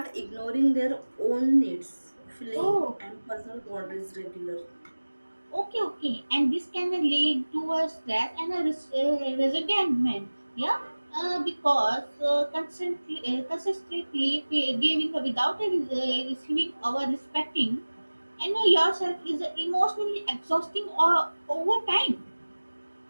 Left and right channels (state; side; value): inverted; both; correlation -1.00